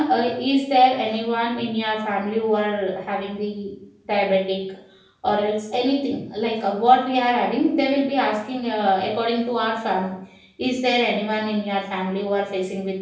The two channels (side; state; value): both; identical; correlation 1.00